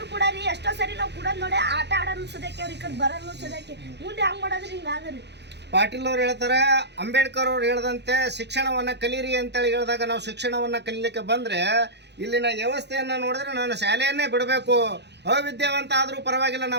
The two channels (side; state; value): left; late; 0.50 ms